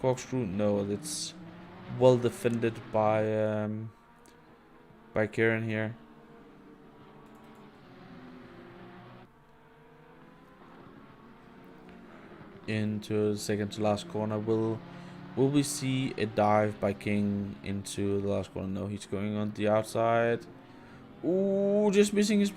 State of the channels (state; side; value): identical; both; correlation 1.00